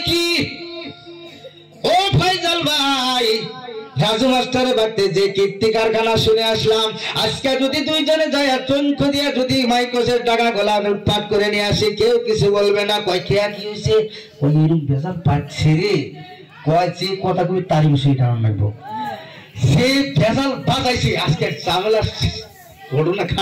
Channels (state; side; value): identical; both; correlation 1.00